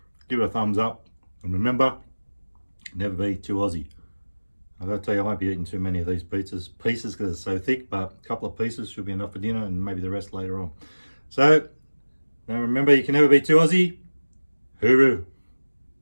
give it a thumbs up, and remember, never be too Aussie. I've got to tell you, I won't be eating too many of these pieces because they're so thick, but a couple of pieces should be enough for dinner, and maybe the rest later on. So, now remember, you can never be too Aussie. Hooroo.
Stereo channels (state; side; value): inverted; both; correlation -1.00